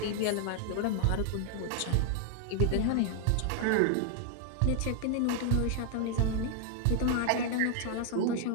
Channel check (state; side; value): different; both; correlation 0.00